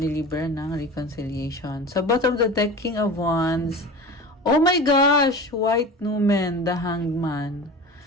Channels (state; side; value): normal; both; correlation 0.33